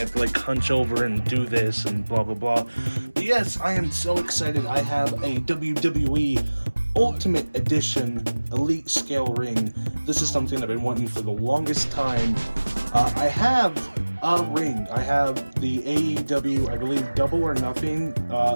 to like hunch over and do this and blah blah blah. But yes, I am so excited. I have a WWE Ultimate Edition Elite Scale ring. This is something I've been wanting for the longest time. I have a ring. I have the AEW, I believe, Double or Nothing,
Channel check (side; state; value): both; inverted; correlation -1.00